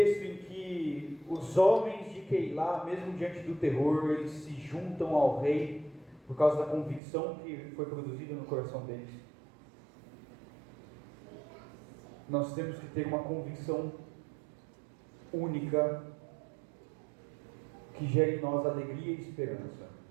em que os homens de Keilá, mesmo diante do terror, eles se juntam ao rei por causa da convicção que foi produzida no coração deles. Nós temos que ter uma convicção única que gere em nós alegria e esperança.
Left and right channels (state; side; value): drops out; left; at 7.0 s